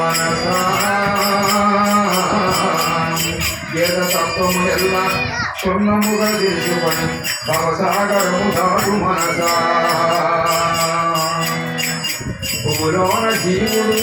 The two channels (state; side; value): identical; both; correlation 1.00